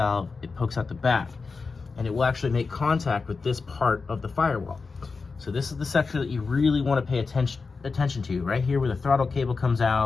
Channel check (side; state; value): right; quieter; 4.5 dB